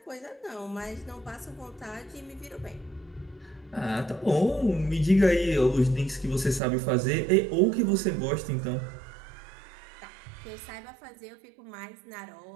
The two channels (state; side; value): drops out; left; at 6.6 s